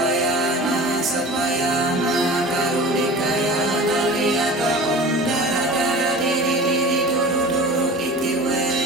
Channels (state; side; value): normal; both; correlation 0.38